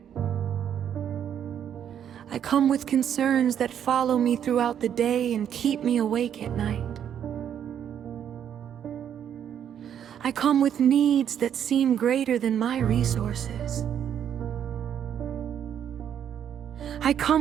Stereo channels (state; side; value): quieter; left; 9.2 dB